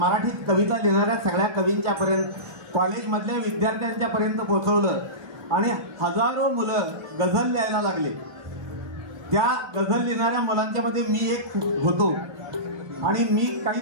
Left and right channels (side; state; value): left; late; 1.6 ms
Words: कविता लिहिणाऱ्या सगळ्या कवींच्या पर्यंत, कॉलेजमधल्या विद्यार्थ्यांच्या पर्यंत पोहोचवलं आणि हजारो मुलं गझल लिहायला लागले। त्या गझल लिहिणाऱ्या मुलांच्या मध्ये मी एक होतो आणि मी काही